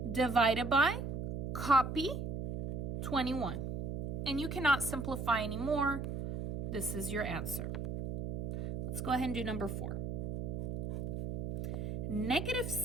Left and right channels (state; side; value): noise; right; hum, 3 dB below the sound